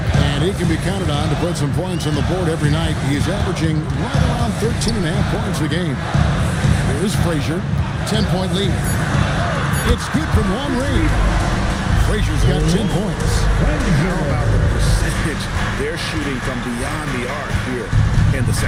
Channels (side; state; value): both; identical; correlation 1.00